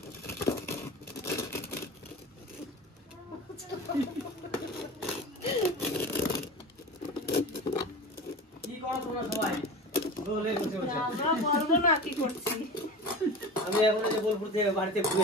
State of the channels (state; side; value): normal; both; correlation 0.32